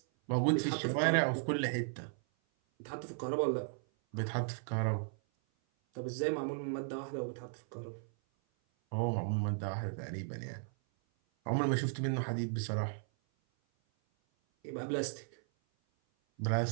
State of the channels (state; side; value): silent; left; 54 dB below the other